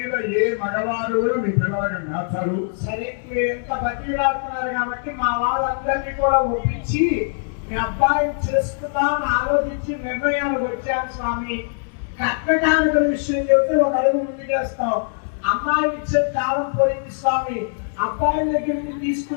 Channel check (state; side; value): silent; right; digital silence